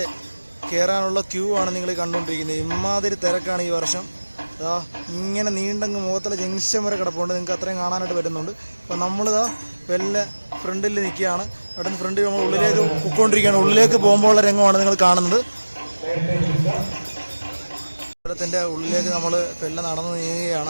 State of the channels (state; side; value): inverted; both; correlation -1.00